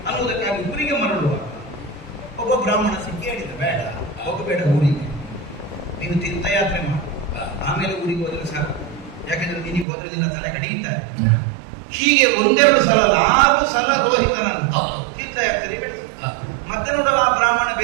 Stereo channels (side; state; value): left; drops out; at 9.9 s